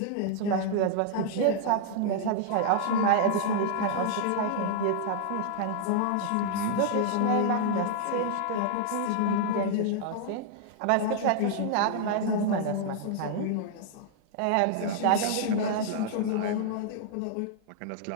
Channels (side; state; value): both; different; correlation -0.01